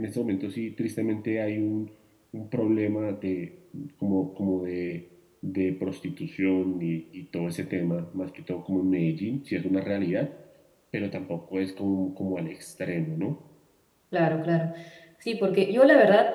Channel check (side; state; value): both; identical; correlation 1.00